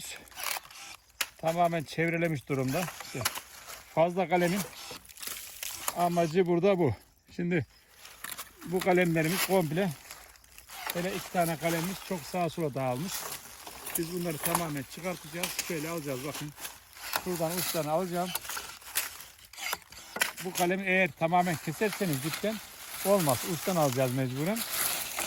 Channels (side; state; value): both; identical; correlation 1.00